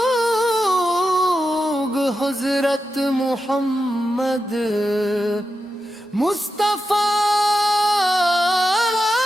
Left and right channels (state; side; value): normal; both; correlation 0.89